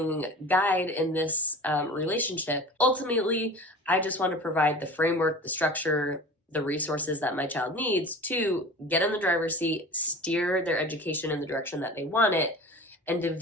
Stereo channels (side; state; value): both; normal; correlation 0.37